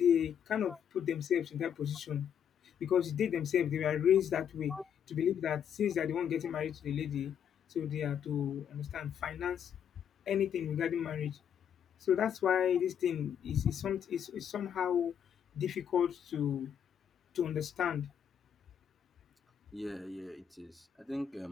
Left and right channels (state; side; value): quieter; right; 8.6 dB